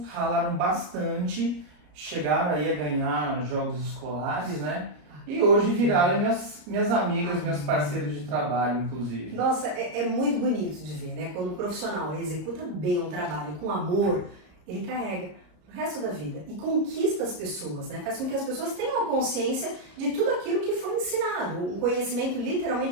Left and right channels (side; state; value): left; late; 34 ms